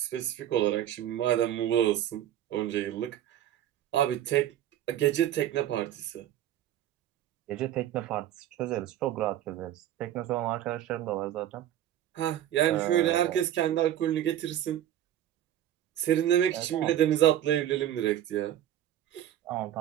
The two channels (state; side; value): quieter; left; 11.8 dB